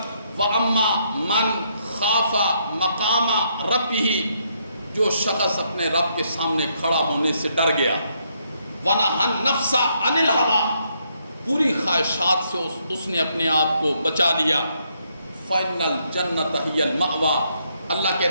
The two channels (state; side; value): inverted; both; correlation -0.74